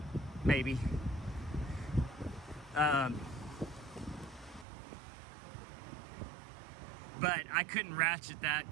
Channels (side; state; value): left; drops out; at 4.7 s